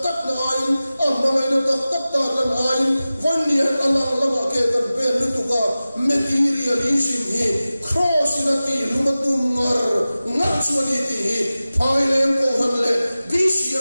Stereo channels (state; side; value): inverted; both; correlation -0.96